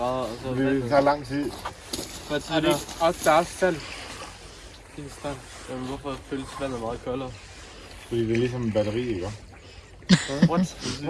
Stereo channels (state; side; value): identical; both; correlation 1.00